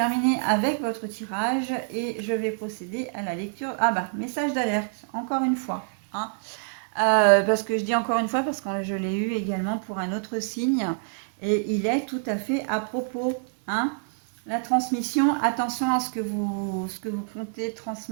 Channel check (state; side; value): silent; left; digital silence